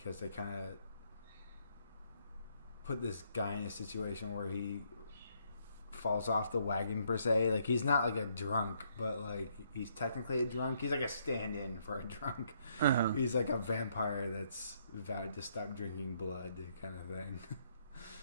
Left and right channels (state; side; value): inverted; both; correlation -0.71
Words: they kind of put this guy in a situation where he falls off the wagon per se. Like he's not like a drunk, but like he's technically a drunk. He's like a stand-in for a drunk. Uh-huh. He's like a vampire that's vowed to stop drinking blood, kind of thing.